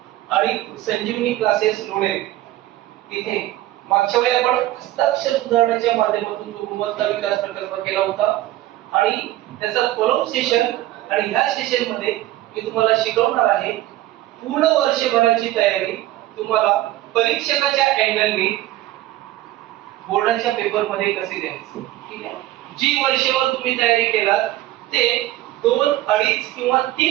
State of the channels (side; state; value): left; quieter; 15.5 dB